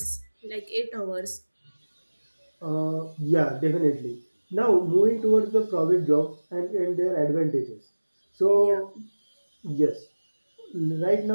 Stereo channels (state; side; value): inverted; both; correlation -1.00